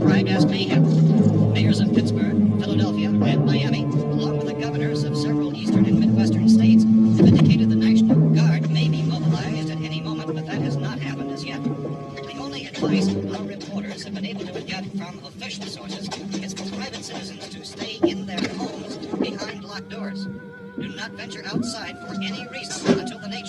as mayhem. Mayors of Pittsburgh, Philadelphia, and Miami, along with the governors of several eastern and midwestern states, have indicated the National Guard may be mobilized at any moment, but that has not happened as yet. The only advice our reporters have been able to get from official sources is for private citizens to stay in their homes behind locked doors. Do not venture outside for any reason until the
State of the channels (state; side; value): identical; both; correlation 1.00